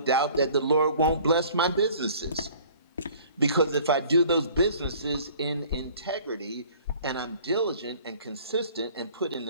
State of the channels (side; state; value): both; inverted; correlation -0.52